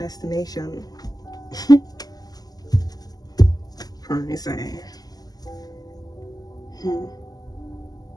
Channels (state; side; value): late; right; 0.18 ms